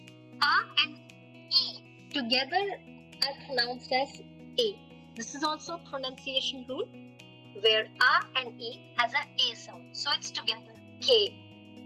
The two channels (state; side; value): identical; both; correlation 1.00